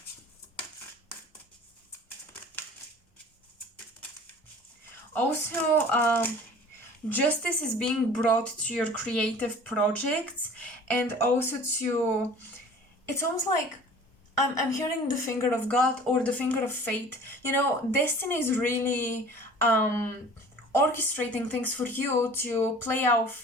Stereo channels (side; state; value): both; normal; correlation 0.46